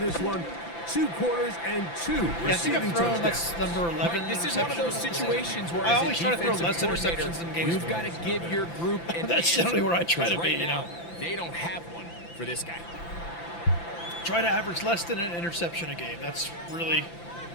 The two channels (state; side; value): late; right; 5.9 ms